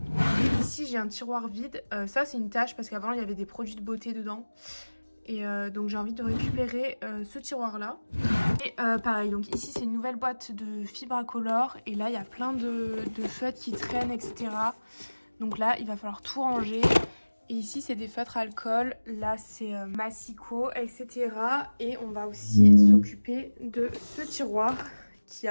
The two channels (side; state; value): both; inverted; correlation -1.00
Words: Ici j'ai un tiroir vide. Ça c'est une tâche parce qu'avant il y avait des produits de beauté dedans. Et donc j'ai envie de récupérer ce tiroir là. Et pareil, donc ici c'est une nouvelle boîte de Fibracolor. Et là il y a plein de feutres qui traînent, etc. Donc là il va falloir tout ranger. Et ici c'est des feutres alcool, là c'est Massico, etc. Et on va aussi s'occuper de ce tiroir qui